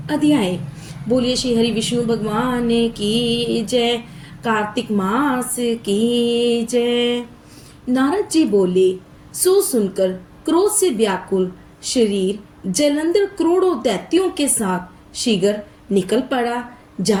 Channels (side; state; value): both; identical; correlation 1.00